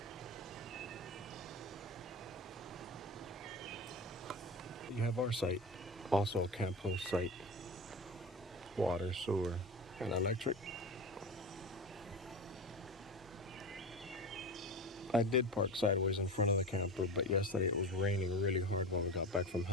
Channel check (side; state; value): both; normal; correlation 0.27